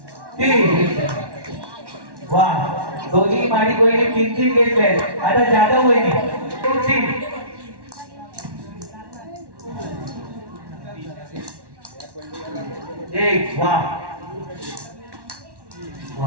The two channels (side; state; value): left; late; 1.1 ms